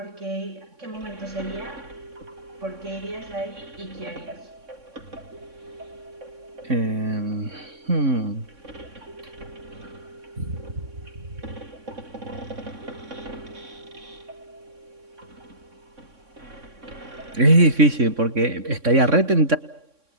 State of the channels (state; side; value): late; left; 3.6 ms